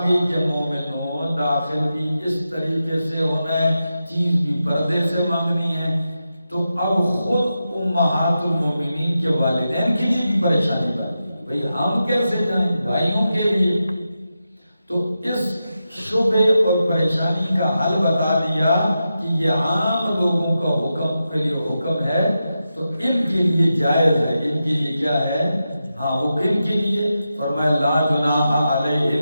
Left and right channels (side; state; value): both; inverted; correlation -0.90